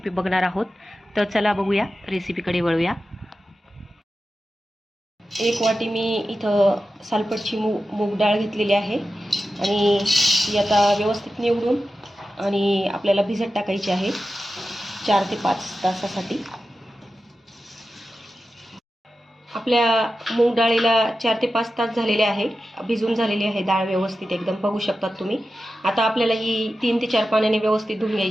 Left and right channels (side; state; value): both; normal; correlation 0.92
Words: बघणार आहोत। तर चला बघूया, रेसिपीकडे वळूया। एक वाटी मी इथं सालपटची मूग डाळ घेतलेली आहे आणि ती आता व्यवस्थित निवडून आणि आपल्याला भिजत टाकायची आहे 4 ते 5 तासासाठी। आपल्या मूग डाळीला 4 ते 5 तास झालेले आहे, भिजून झालेली आहे डाळ व्यवस्थित एकदम, बघू शकतात तुम्ही। आता आपल्याला ही 3 ते 4 पाण्याने व्यवस्थित धुवून